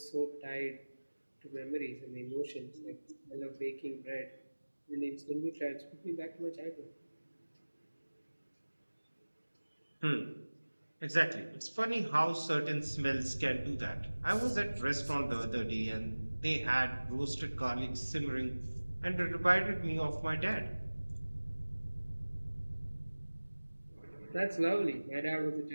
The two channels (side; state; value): both; inverted; correlation -1.00